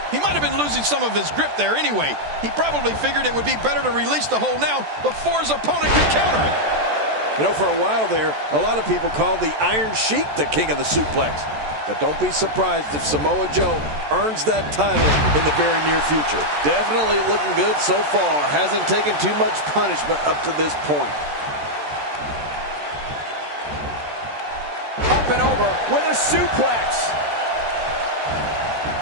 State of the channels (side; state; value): left; late; 14 ms